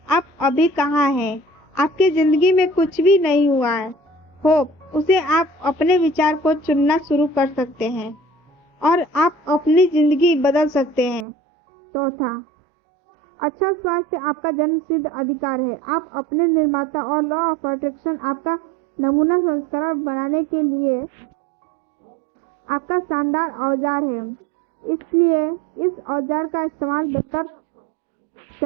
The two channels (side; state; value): left; drops out; at 11.2 s